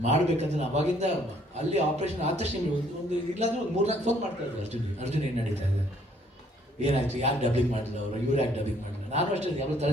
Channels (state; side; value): normal; both; correlation 0.64